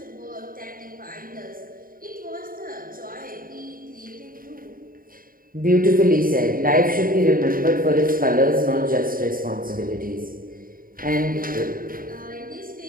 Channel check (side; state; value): left; late; 0.41 ms